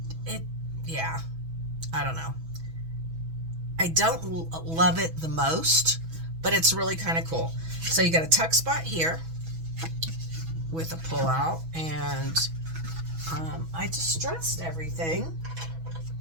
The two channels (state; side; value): late; left; 6.1 ms